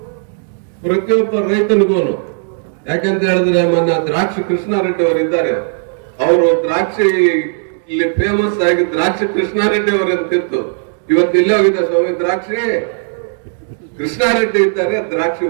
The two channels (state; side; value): silent; left; digital silence